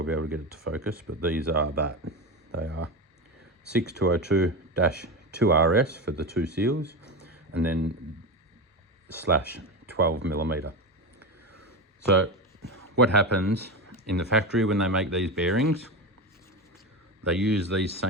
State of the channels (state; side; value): normal; both; correlation 0.19